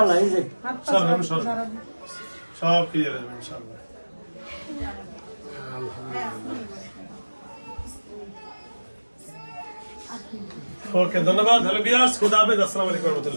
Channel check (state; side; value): inverted; both; correlation -1.00